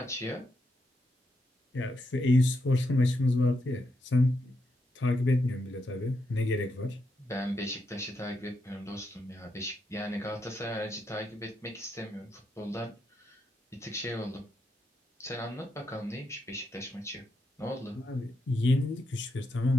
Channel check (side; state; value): both; normal; correlation 0.82